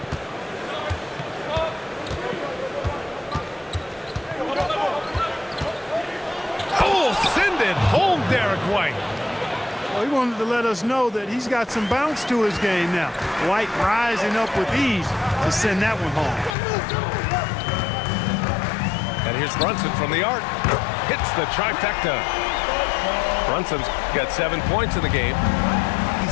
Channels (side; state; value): right; drops out; at 16.6 s